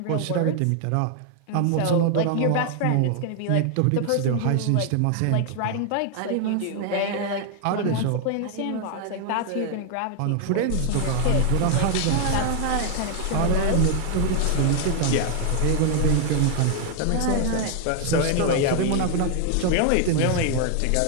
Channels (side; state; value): both; different; correlation 0.00